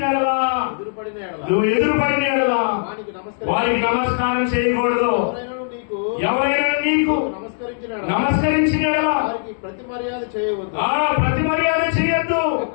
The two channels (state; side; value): silent; right; digital silence